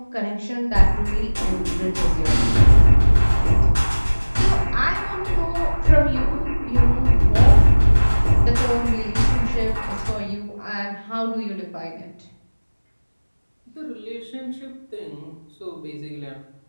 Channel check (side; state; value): both; inverted; correlation -1.00